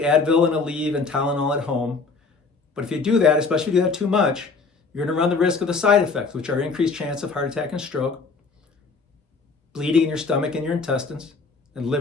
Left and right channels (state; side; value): quieter; right; 4.4 dB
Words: and Aleve and Tylenol at home. But if you do that, especially if you do that too much, you're going to run the risk of the side effects, which are increased chance of heart attack and stroke, bleeding in your stomach and your intestines, and